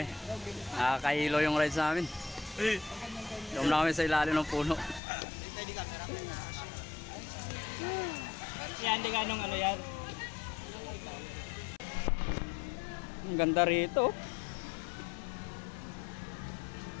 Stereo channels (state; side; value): drops out; right; at 5.0 s